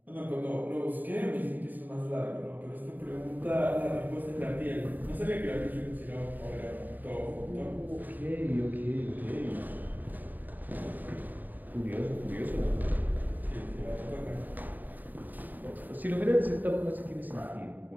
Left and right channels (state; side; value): late; left; 0.086 ms